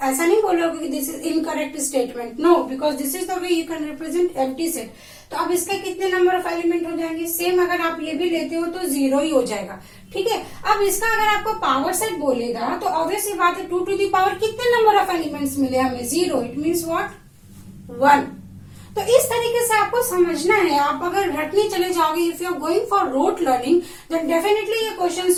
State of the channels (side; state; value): both; identical; correlation 1.00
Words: ऐसा नहीं बोलोगे कि this is incorrect statement, no, because this is the way you can represent empty set. तो अब इसके कितने नंबर ऑफ एलिमेंट हो जाएंगे, सेम अगर आप ये भी लेते हो तो 0 ही हो जाएगा। ठीक है, अब इसका अगर आपको पावर सेट बोलेगा तो ऑब्वियसली बात है 2 टू दी पावर कितने नंबर ऑफ एलिमेंट्स मिले हमें, 0, इट मीन्स व्हाट 1। तो इस तरीके से आपको समझना है। आप अगर रटने चले जाओगे, if you are going for rote learning, then definitely ये